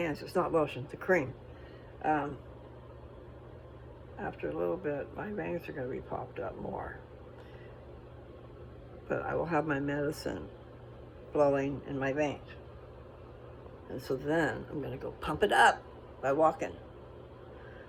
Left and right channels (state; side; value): identical; both; correlation 1.00